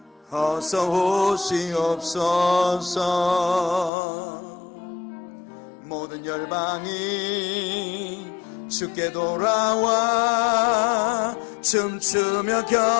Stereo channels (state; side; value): drops out; right; at 3.9 s